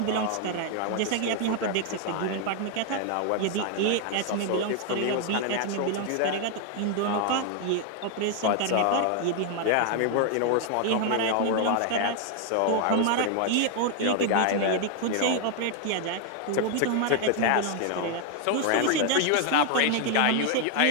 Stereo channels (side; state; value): both; different; correlation 0.00